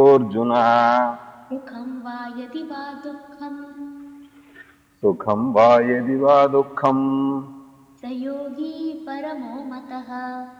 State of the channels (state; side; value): identical; both; correlation 1.00